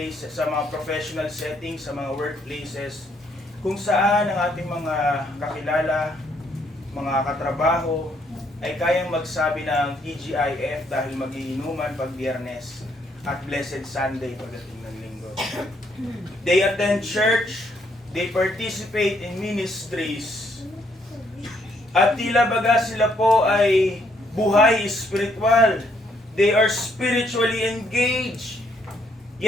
sa mga professional settings, sa mga workplaces, kung saan ang ating mga kakilala, mga katrabaho, ay kayang magsabi ng TGIF dahil magiinuman pag Biyernes at Blessed Sunday pagdating ng Linggo. They attend church, they participate in ministries, at tila baga sila po ay buhay spiritual. They are spiritually engaged,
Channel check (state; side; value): normal; both; correlation 0.71